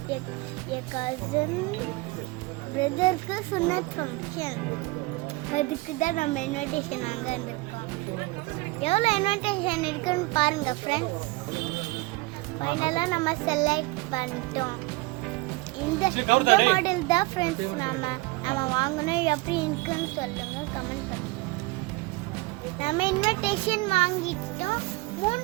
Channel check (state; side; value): quieter; left; 23.3 dB